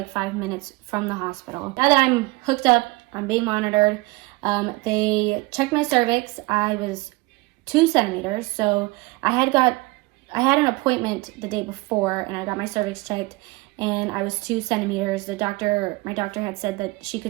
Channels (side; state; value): left; quieter; 23.7 dB